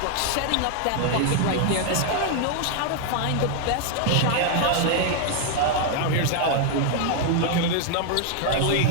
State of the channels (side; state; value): both; different; correlation 0.00